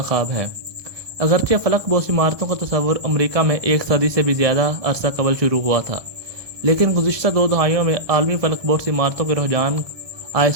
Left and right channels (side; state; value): left; late; 1.2 ms